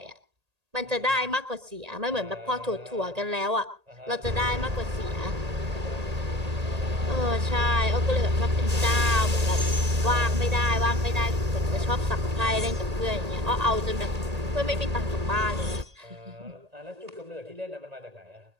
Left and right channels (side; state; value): left; late; 1.8 ms